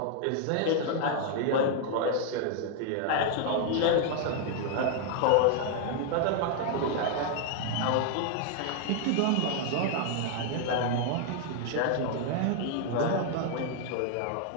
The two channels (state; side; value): different; both; correlation 0.00